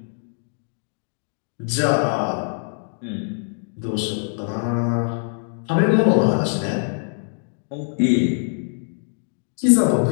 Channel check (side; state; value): right; silent; digital silence